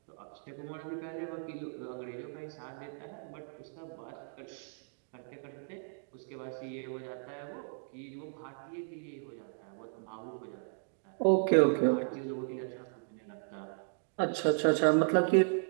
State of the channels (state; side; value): silent; left; digital silence